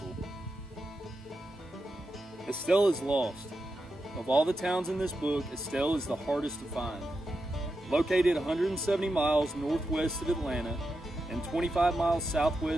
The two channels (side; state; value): both; normal; correlation 0.88